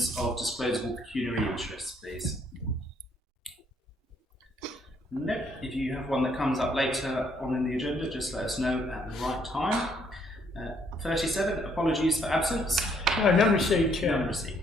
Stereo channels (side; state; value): both; normal; correlation 0.69